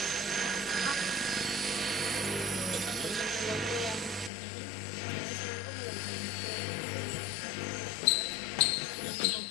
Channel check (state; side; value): drops out; right; at 4.3 s